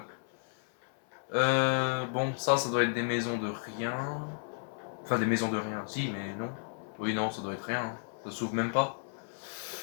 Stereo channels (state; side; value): silent; right; 56 dB below the other